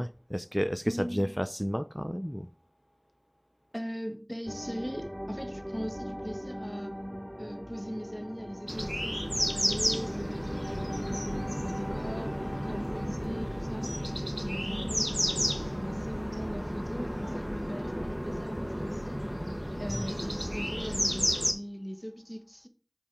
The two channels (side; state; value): both; identical; correlation 1.00